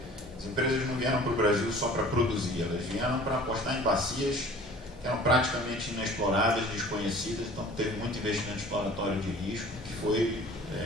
As empresas não vieram para o Brasil só para produzir, elas vieram para apostar em bacias que eram praticamente inexploradas, desconhecidas, então teve muito investimento exploratório de risco, que foi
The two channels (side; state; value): both; normal; correlation 0.47